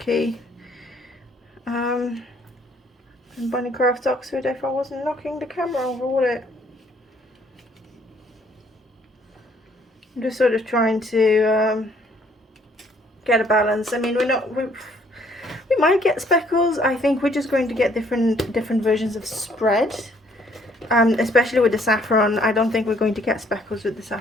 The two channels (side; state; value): both; normal; correlation 0.64